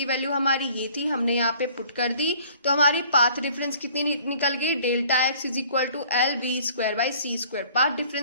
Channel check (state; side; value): inverted; both; correlation -0.54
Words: वैल्यू हमारी ये थी, हमने यहाँ पे पुट कर दी। तो हमारी पाथ डिफरेंस कितनी निकल गई, ΔX is equal to LV²/c²। Path